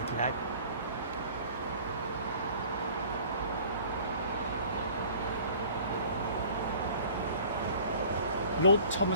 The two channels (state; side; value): inverted; both; correlation -0.49